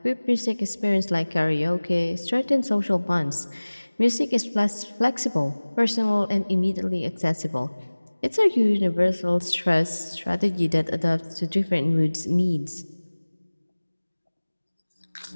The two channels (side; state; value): both; inverted; correlation -1.00